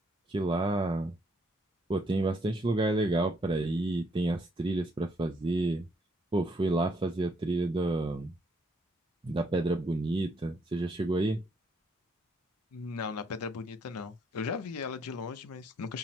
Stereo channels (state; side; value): normal; both; correlation 0.71